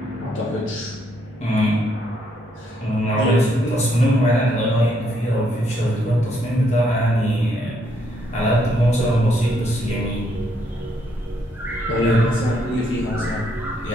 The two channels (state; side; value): normal; both; correlation 0.73